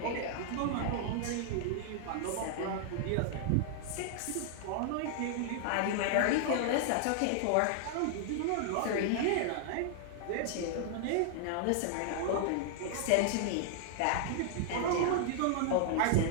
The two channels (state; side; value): different; both; correlation -0.01